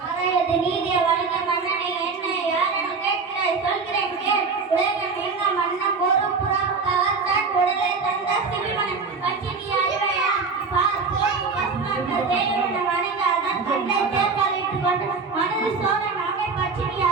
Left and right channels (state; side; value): quieter; left; 4.8 dB